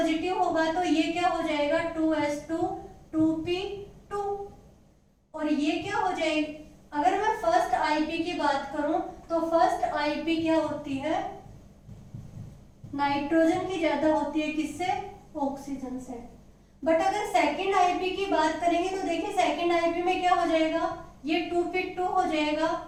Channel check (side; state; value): both; identical; correlation 1.00